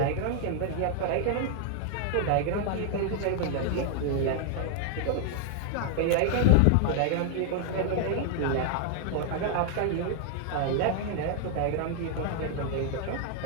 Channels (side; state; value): both; different; correlation 0.00